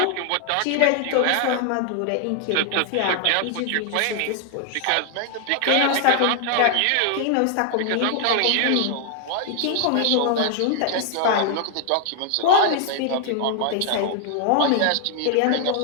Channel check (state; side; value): different; both; correlation 0.00